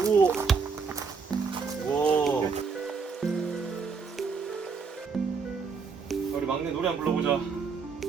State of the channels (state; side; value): quieter; left; 5.2 dB